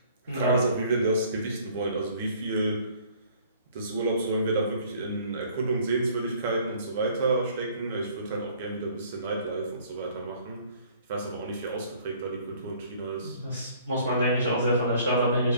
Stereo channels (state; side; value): inverted; both; correlation -0.56